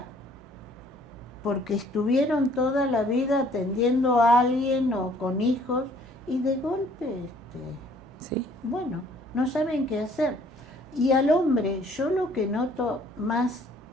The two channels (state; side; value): normal; both; correlation 0.59